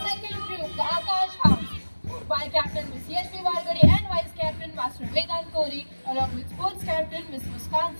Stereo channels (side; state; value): both; inverted; correlation -1.00